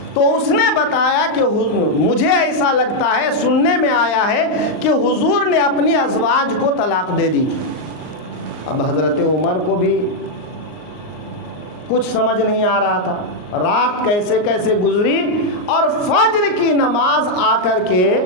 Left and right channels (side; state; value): right; late; 38 ms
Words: تو اس نے بتایا کہ مجھے ایسا لگتا ہے، سننے میں آیا ہے کہ حضور نے اپنی ازواج کو طلاق دے دی۔ اب حضرت عمر کو بھی کچھ سمجھ نہیں آ رہا تھا، رات کیسے کیسے گزری، اور فجر کی نماز آ کر کے